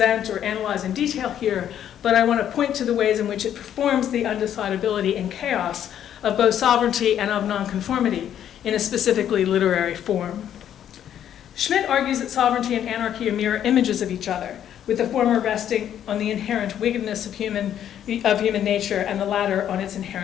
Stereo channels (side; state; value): right; quieter; 10.2 dB